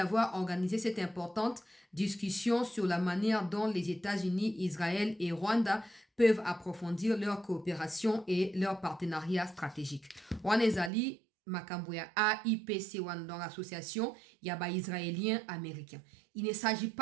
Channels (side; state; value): left; drops out; at 10.9 s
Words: organisé cette importante discussion sur la manière dont les États-Unis, Israël et Rwanda peuvent approfondir leur coopération et leur partenariat stratégique. Wanezali Makamboya AIPC dans l'association Yaba Israélien américain. Il ne s'agit